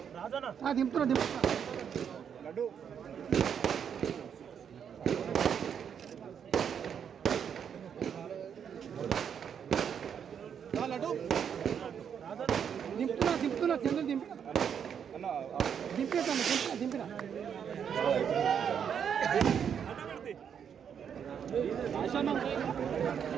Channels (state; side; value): quieter; left; 7.9 dB